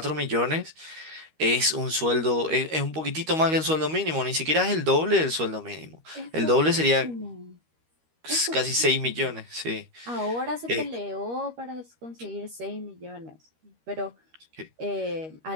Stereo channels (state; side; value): late; left; 13 ms